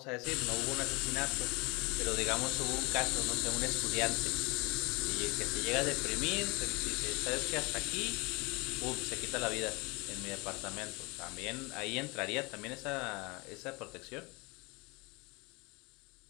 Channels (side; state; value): right; quieter; 27.0 dB